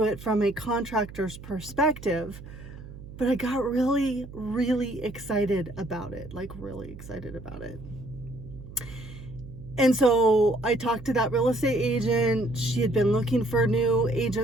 it from a contractor's perspective. But I got really, really excited about it, And so I talked to that real estate agent. She had been looking for new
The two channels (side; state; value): right; noise; hum, 15 dB below the sound